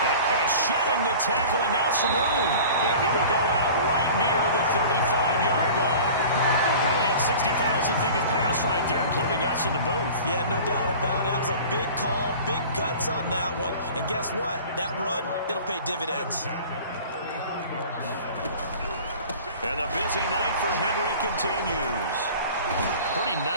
shedding the tackle, and now some room. And he will go out right near the 35-yard line. Probably had 60,000 thinking pass right there, including us in the booth. Yeah, no doubt about it. That was a big call, big guts on that one. And guess what? That run, it'll pay dividends. And the busy night for Henry continues. Pretty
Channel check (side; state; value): both; inverted; correlation -0.41